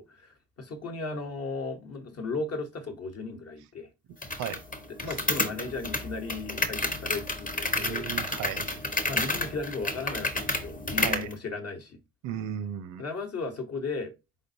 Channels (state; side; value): normal; both; correlation 0.21